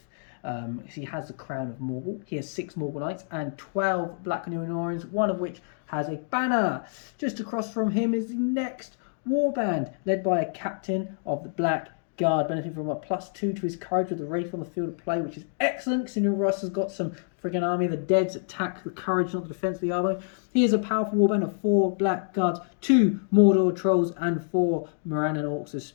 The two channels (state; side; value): silent; right; digital silence